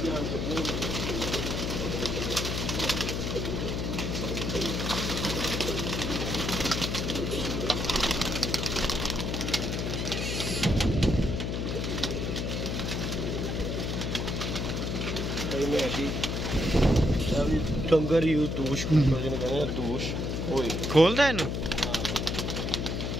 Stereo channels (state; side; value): noise; left; hum, 1 dB below the sound